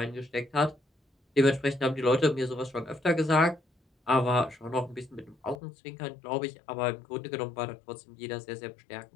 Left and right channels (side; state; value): right; drops out; at 5.6 s